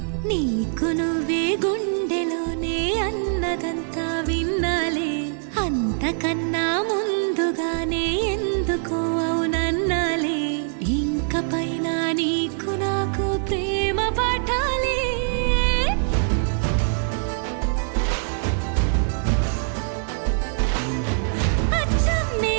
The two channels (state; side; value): silent; left; digital silence